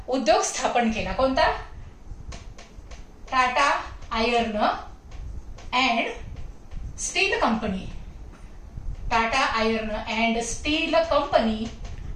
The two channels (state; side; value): identical; both; correlation 1.00